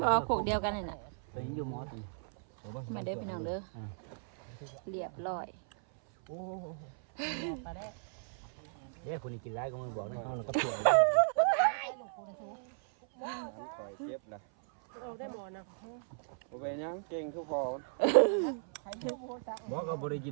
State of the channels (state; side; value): silent; left; 54 dB below the other